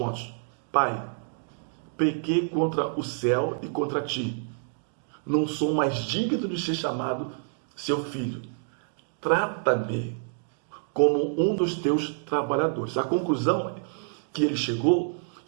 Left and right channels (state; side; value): silent; left; 60 dB below the other